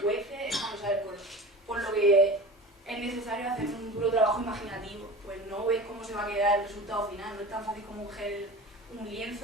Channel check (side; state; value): both; normal; correlation 0.34